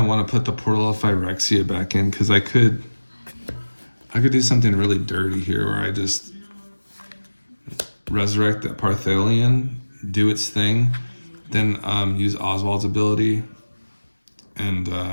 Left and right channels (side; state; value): both; inverted; correlation -1.00